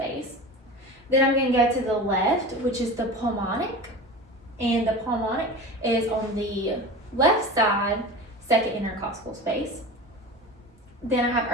Then I'm going to go to the left, which is the pulmonic. And the pulmonic is on the left side, second intercostal space. Then I have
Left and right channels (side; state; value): both; normal; correlation 0.32